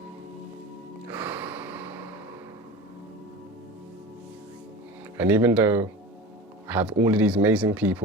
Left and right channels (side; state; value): both; normal; correlation 0.33